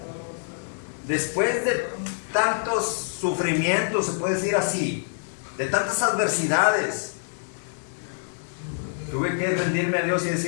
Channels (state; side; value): silent; right; 58 dB below the other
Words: después de tantos sufrimientos, se puede decir así, de tantas adversidades, tuve que rendirme a Dios y